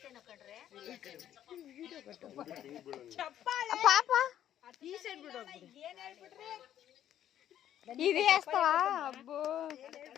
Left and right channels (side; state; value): right; quieter; 11.0 dB